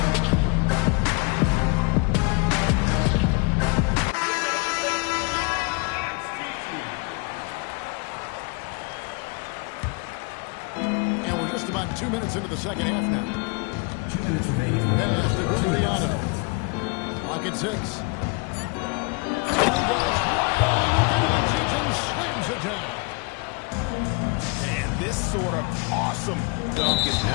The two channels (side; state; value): right; quieter; 30.6 dB